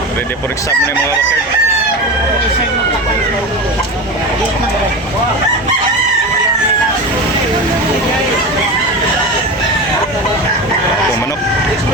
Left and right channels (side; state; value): both; normal; correlation 0.25